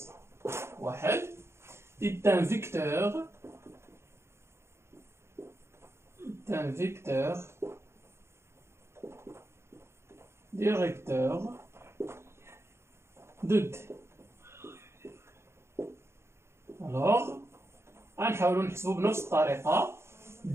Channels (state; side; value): late; left; 0.13 ms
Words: واحد. est un vecteur directeur de D. Alors غنحاولوا نحسبوا بنفس الطريقة